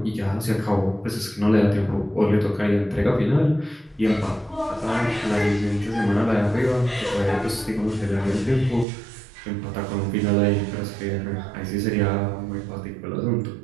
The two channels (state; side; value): drops out; left; at 8.8 s